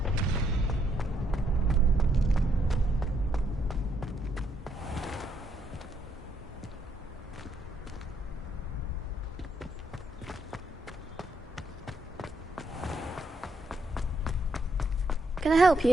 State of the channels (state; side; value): normal; both; correlation 0.74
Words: Can I help